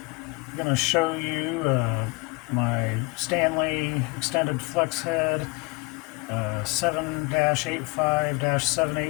going to show you my Stanley extended flex head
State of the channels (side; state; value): right; quieter; 28.4 dB